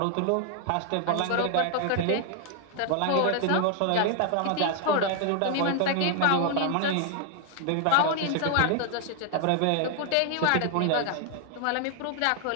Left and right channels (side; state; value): both; different; correlation 0.00